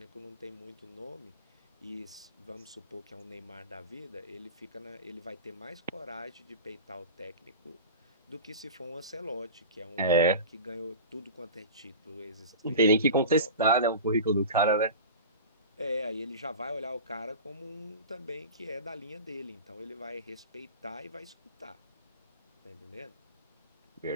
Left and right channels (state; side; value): inverted; both; correlation -0.32